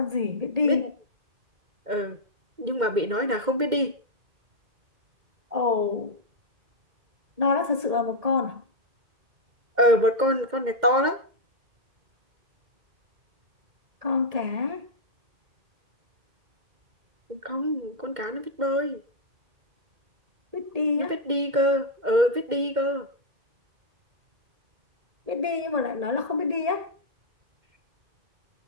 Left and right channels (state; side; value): late; left; 2.1 ms